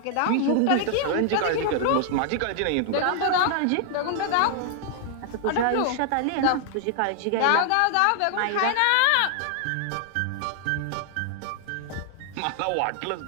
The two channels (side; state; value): both; different; correlation 0.00